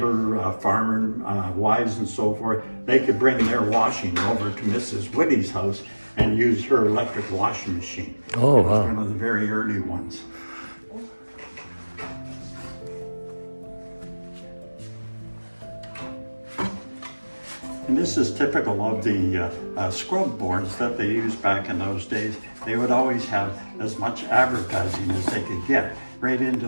farmer wives and so forth. They could bring their washing over to Mrs. Whitty's house, and used her electric washing machine. Oh, It was wow. one of the very early ones. And this is typical of the scrub boards that they used back in those days. They would always have as much advertising as they could get right into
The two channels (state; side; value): inverted; both; correlation -1.00